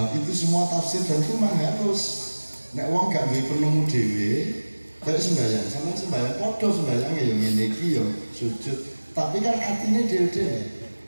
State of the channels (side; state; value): both; inverted; correlation -1.00